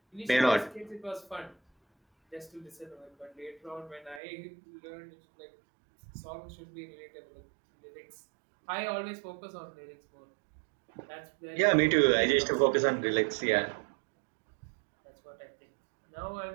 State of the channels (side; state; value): left; drops out; at 4.2 s